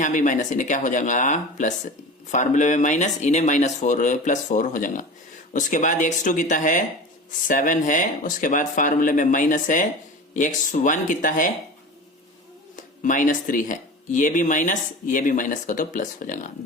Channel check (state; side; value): normal; both; correlation 0.33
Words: भी माइनस, इन्हें क्या हो जाएगा प्लस। फार्मूले में माइनस, इन्हें -4 +4 हो जाएगा। उसके बाद x2 कितना है 7 है, उसके बाद फार्मूले में माइनस है, x1 कितना है -3 है, ये भी माइनस, ये भी माइनस का तो प्लस हो जाएगा।